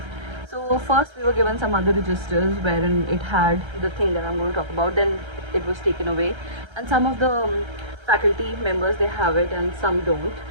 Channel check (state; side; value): late; left; 1.3 ms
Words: so first we were given some other registers wherein it had the thing that I'm going to talk about, then it was taken away, and some of the faculty members they have it, and some don't.